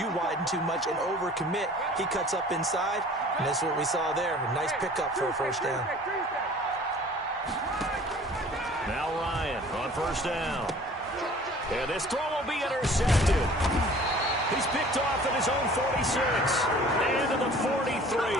widen too much and overcommit. He cuts up inside, and that's what we saw there. A nice pickup for a first down. Now Ryan on first down. And this throw will be intercepted. He's picked off at his own 46 and to the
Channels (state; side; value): normal; both; correlation 0.48